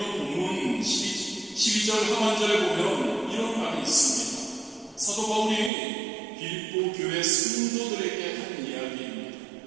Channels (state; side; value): drops out; left; at 5.7 s